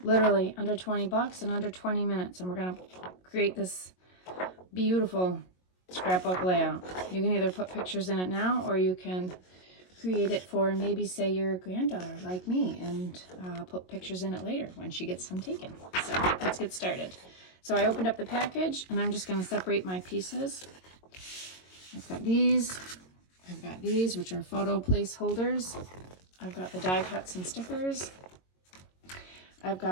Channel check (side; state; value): right; late; 22 ms